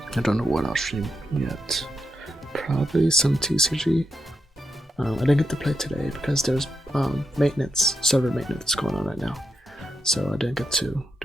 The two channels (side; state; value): both; normal; correlation 0.84